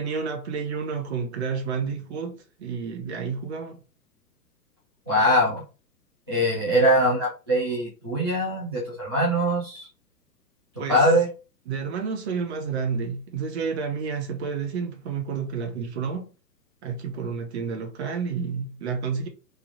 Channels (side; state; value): both; normal; correlation -0.02